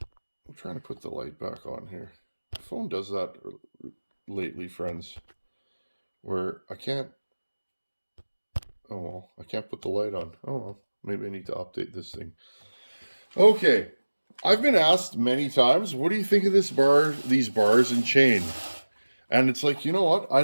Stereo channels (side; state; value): both; inverted; correlation -1.00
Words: trying to put the light back on here. The phone does that lately, friends, where I can't, oh well, I can't put the light on. Oh well, maybe I need to update this thing. Okay, I've been asked many times, what do you think of this bar, these bars and chain? And it's like, you know what? I